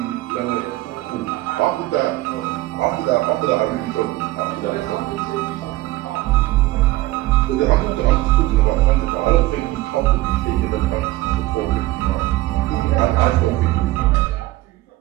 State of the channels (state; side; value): quieter; left; 17.8 dB